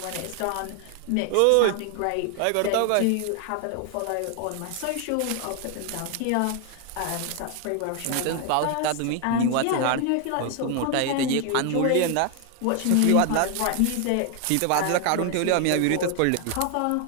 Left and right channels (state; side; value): different; both; correlation 0.00